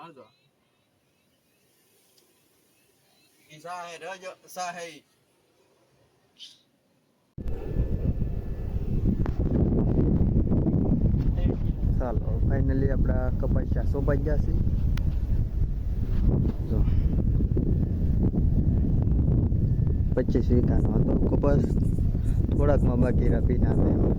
ઈ ચા હે રજો ચા હે। ચાલો ફાઇનલી આપણા કપાસિયા સોંપાઈ ગયા છે। જો 25 વીઘાનો હતો કપાસ, થોડાકમાં બાકી રહ્યા પીના છે।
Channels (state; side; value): identical; both; correlation 1.00